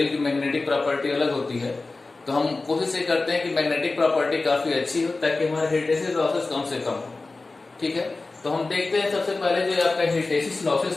की मैग्नेटिक प्रॉपर्टी अलग होती है, तो हम कोशिश ये करते हैं कि मैग्नेटिक प्रॉपर्टी काफी अच्छी हो ताकि हमारे हिस्टैसिस लॉसेस कम से कम हो। ठीक है, तो हम देखते हैं सबसे पहले जो आपका हिस्टैसिस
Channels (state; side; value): quieter; right; 3.5 dB